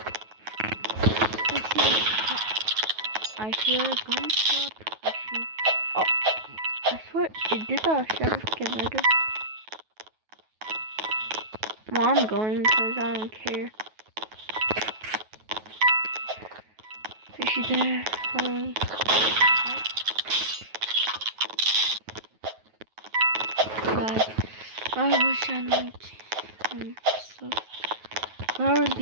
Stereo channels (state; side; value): late; left; 9.3 ms